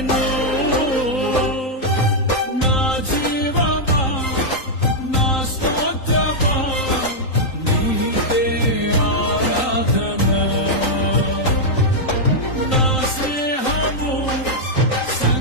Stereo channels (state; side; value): late; right; 3.9 ms